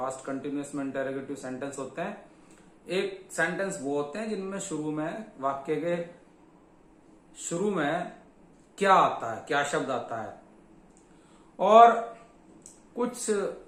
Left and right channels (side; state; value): both; identical; correlation 1.00